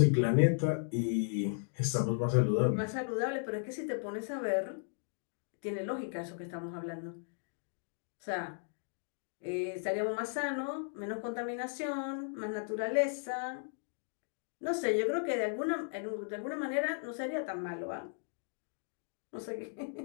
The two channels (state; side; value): silent; right; digital silence